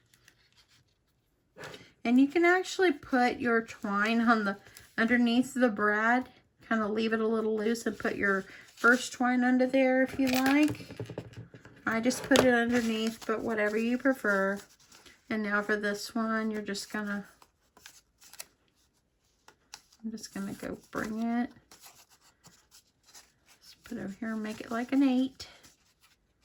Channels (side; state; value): both; identical; correlation 1.00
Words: And you can actually put your twine on the underneath the brad, kind of leave it a little loose and put your first twine under there if you like. I just put it underneath, but whatever you prefer. And now for this one, I'm just gonna go bring it. Just put it over here and make it like an 8.